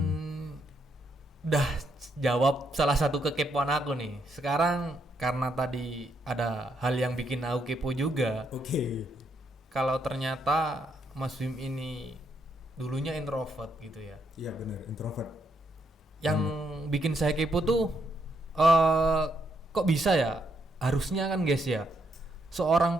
udah jawab salah satu kekepoan aku nih. Sekarang karena tadi ada hal yang bikin aku kepo juga. Oke. Kalau ternyata Mas Wim ini dulunya introvert gitu ya. Iya benar, introvert. Yang bikin saya kepo tuh kok bisa ya? Harusnya kan guys ya, seorang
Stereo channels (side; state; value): both; normal; correlation 0.76